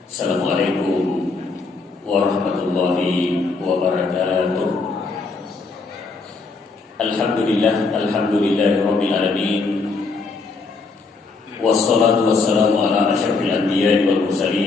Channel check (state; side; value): quieter; right; 4.1 dB